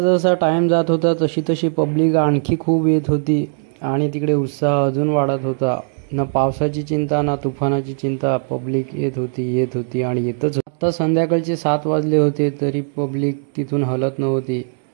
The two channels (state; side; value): silent; left; digital silence